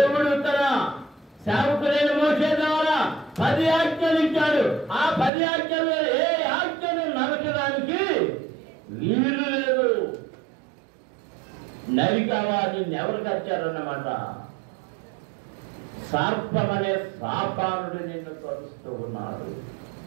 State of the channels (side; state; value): left; drops out; at 5.3 s